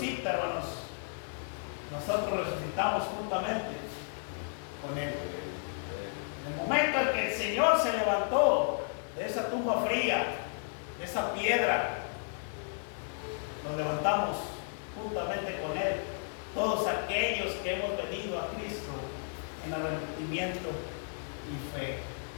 hermanos, nosotros resucitamos juntamente con Él. En el momento en que el Señor se levantó de esa tumba fría, de esa piedra, nos levantamos juntamente con Él, todos aquellos que hemos venido a Cristo en arrepentimiento y fe.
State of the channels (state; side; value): silent; right; digital silence